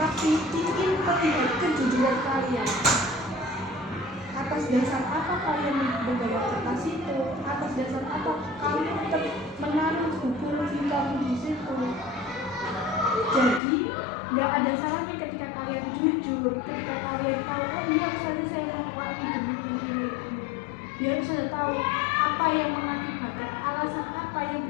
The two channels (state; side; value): drops out; right; at 13.6 s